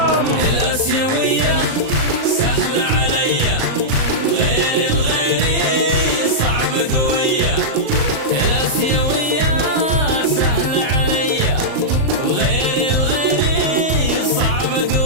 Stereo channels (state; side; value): late; left; 38 ms